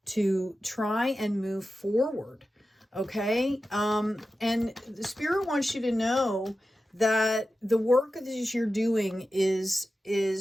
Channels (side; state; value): both; normal; correlation 0.92